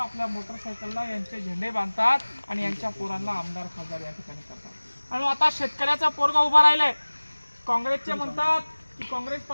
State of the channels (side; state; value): both; inverted; correlation -1.00